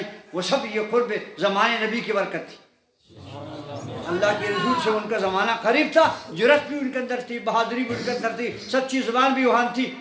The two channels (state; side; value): identical; both; correlation 1.00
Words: وہ سب یہ قرب زمانے نبی کی برکت تھی. اللہ کے رسول سے ان کا زمانہ قریب تھا، جرأت بھی ان کے اندر تھی، بہادری بھی ان کے اندر تھی، سچی زبان بھی وہاں تھی،